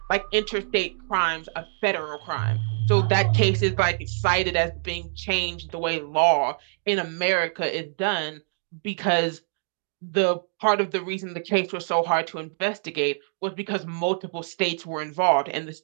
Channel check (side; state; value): left; silent; digital silence